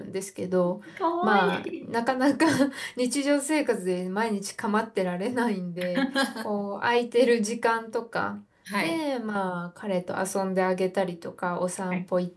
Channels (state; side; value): identical; both; correlation 1.00